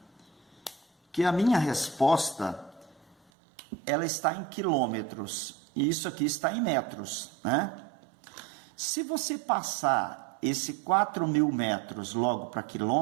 que a minha resposta, ela está em quilômetros. E isso aqui está em metros, né? Se você passar esse 4.000 metros logo para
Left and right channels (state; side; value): drops out; left; at 3.2 s